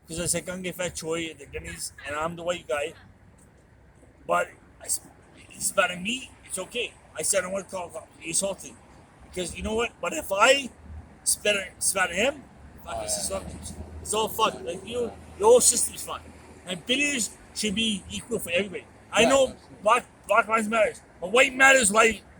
because I said Gange Fat Choi and the Guineas, and I'm the white guy. But he spat at me, it's okay. I said I want to call he assaulted. Because you know what? But if I spat at him, fuck, it's all fucked. Like the whole system's fucked. And bidders should be equal for everybody. I know black lives matters, but white matters like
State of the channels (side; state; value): both; identical; correlation 1.00